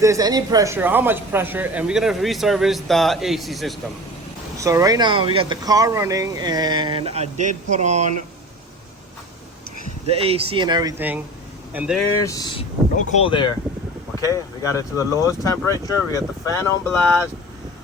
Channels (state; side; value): normal; both; correlation 0.37